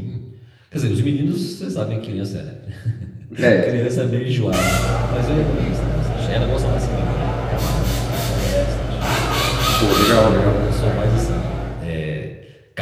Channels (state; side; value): identical; both; correlation 1.00